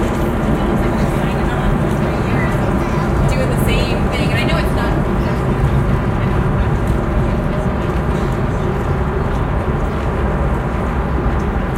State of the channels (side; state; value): both; identical; correlation 1.00